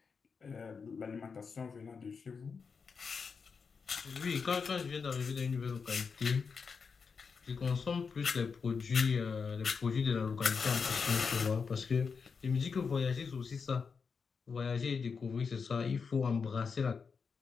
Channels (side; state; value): right; quieter; 5.5 dB